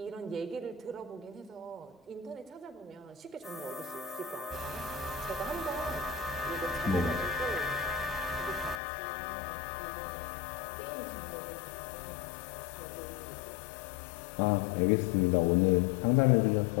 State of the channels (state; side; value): drops out; right; at 8.8 s